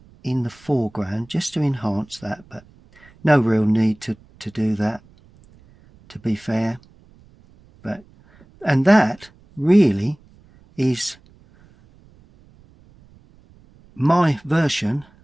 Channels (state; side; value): noise; right; rumble, 28 dB below the sound